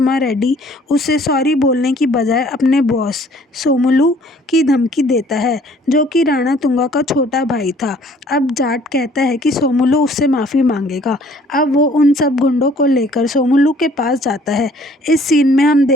रेड्डी उसे सॉरी बोलने की बजाय अपने बॉस सोमुलू की धमकी देता है, जो कि राणा तुंगा का छोटा भाई था। अब जाट कहता है कि सोमुलू उससे माफ़ी मांगेगा। अब वो उन सब गुंडों को लेकर सोमुलू के पास जाता है। इस सीन में हम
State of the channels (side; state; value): both; normal; correlation 0.57